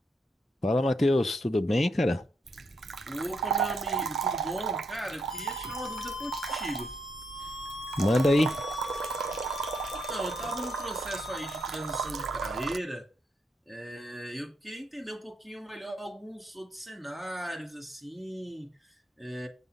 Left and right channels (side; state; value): both; normal; correlation 0.79